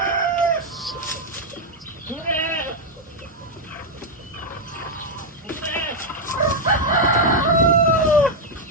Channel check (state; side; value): normal; both; correlation 0.00